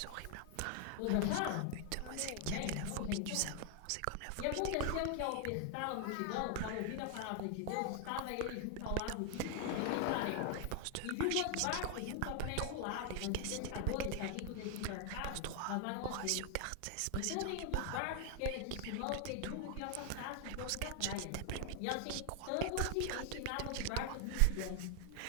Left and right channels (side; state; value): both; different; correlation 0.00